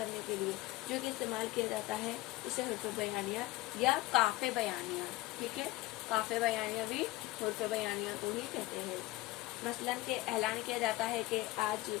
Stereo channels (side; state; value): right; quieter; 19.0 dB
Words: के लिए जो कि इस्तेमाल किया जाता है, इसे हुर्फ़ बयानिया या काफ़े बयानिया। ठीक है, काफ़े बयानिया भी हुर्फ़ बयानिया को ही कहते हैं। मसलन के ऐलान किया जाता है कि आज